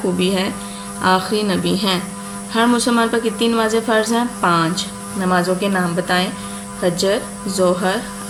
है? आखिरी नबी हैं। हर मुसलमान पर कितनी नमाज़ें फ़र्ज़ हैं? 5। नमाज़ों के नाम बताएं। फजर, ज़ोहर,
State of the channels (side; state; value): both; identical; correlation 1.00